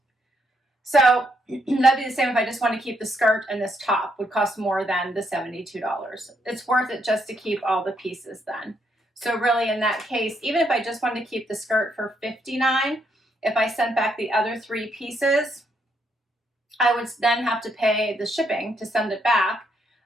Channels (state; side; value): normal; both; correlation 0.75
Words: So that'd be the same if I just want to keep the skirt and this top, would cost more than the $72. It's worth it just to keep all the pieces then. So really in that case, even if I just wanted to keep the skirt for $59, if I sent back the other 3 pieces, I would then have to pay the shipping to send it back.